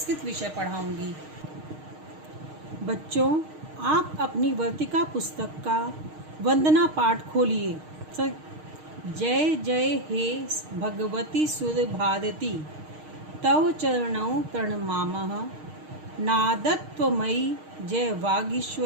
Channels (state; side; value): late; left; 6.5 ms